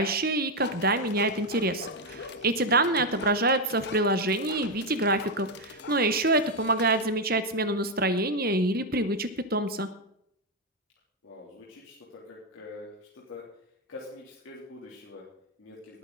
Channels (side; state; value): both; normal; correlation 0.05